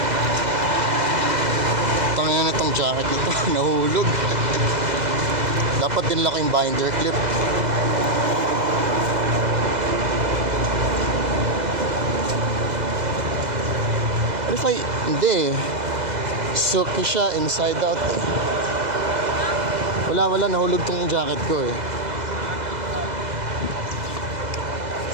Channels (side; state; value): left; late; 2.0 ms